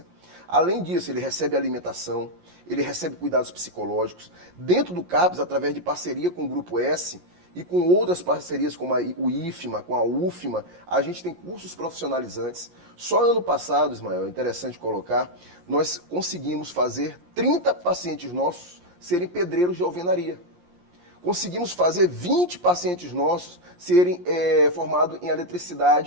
Além disso, ele recebe alimentação, ele recebe cuidados psicológicos. Dentro do CAPS, através de parceria com o Grupo S e com outras parcerias como o IFMA, com a UFMA, a gente tem cursos profissionalizantes. Só ano passado, Ismael, é interessante colocar, nós conseguimos fazer 30 pacientes nossos serem pedreiros de alvenaria. Conseguimos fazer 20 pacientes nossos serem formados em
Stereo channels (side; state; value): left; late; 17 ms